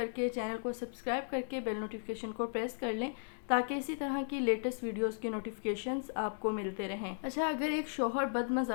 کے، چینل کو سبسکرائب کر کے بیل نوٹیفیکیشن کو پریس کر لیں تاکہ اسی طرح کی لیٹسٹ ویڈیوز کے نوٹیفیکیشنز آپ کو ملتے رہیں۔ اچھا، اگر ایک شوہر بد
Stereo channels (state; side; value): silent; right; digital silence